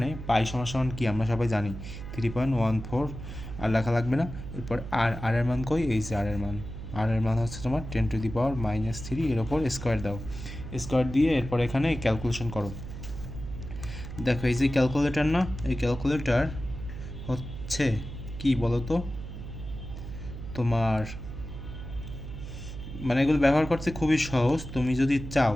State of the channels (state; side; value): noise; right; hum, 9 dB below the sound